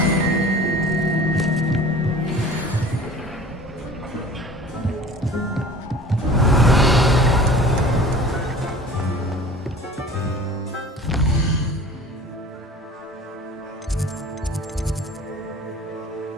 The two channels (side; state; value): both; normal; correlation 0.43